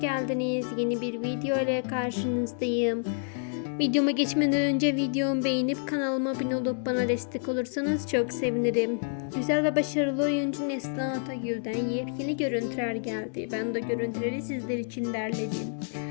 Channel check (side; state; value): right; silent; digital silence